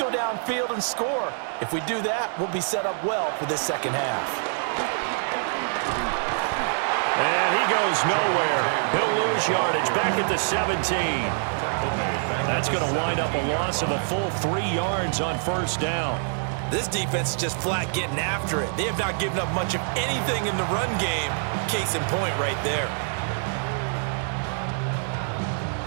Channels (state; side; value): silent; left; 61 dB below the other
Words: downfield and score. If we do that, we'll be set up well for this second half. And he goes nowhere. He'll lose yardage back at the 17. That's going to wind up a loss of a full 3 yards on first down. This defense is just flat getting after it. They have not given up much of anything in the run game. Case in point right there.